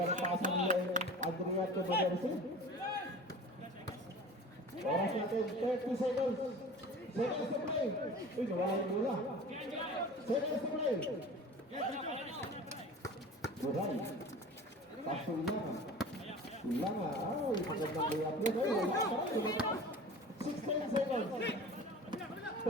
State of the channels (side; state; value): both; normal; correlation 0.39